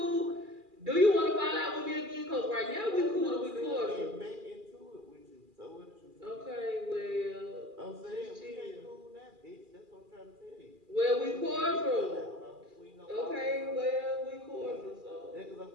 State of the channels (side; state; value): left; late; 2.4 ms